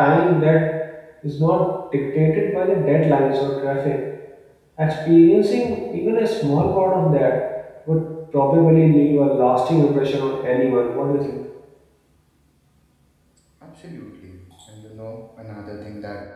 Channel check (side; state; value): both; identical; correlation 1.00